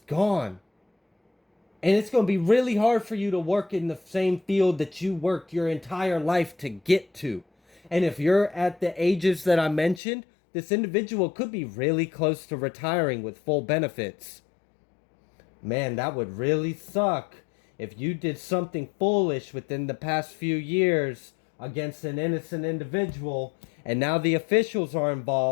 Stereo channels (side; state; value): right; drops out; at 10.0 s